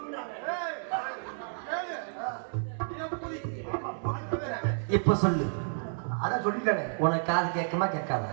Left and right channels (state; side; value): silent; left; digital silence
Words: இப்ப சொல்லு. அதான் சொல்லிட்டேனே. உனக்கு காது கேட்குமா கேட்காத?